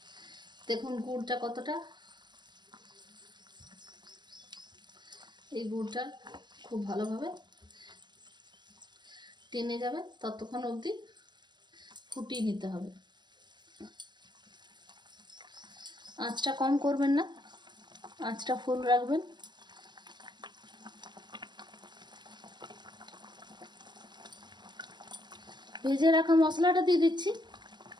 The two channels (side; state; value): left; late; 0.21 ms